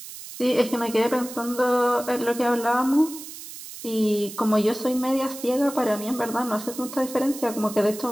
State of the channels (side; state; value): right; noise; hiss, 13 dB below the sound